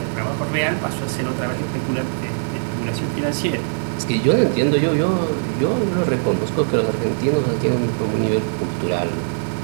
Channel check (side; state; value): left; silent; 65 dB below the other